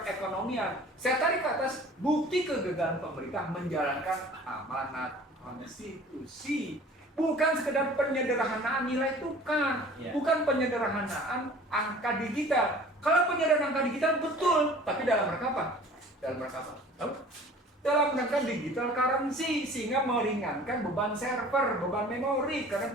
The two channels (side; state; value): both; normal; correlation 0.46